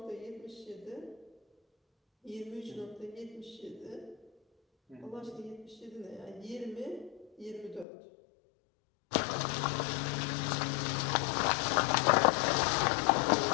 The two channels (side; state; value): right; drops out; at 7.9 s